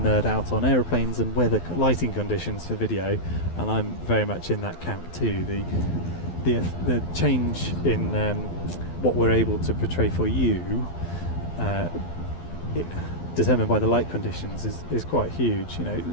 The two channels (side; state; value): right; late; 12 ms